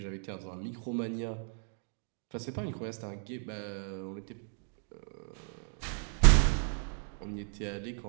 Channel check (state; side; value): silent; left; 55 dB below the other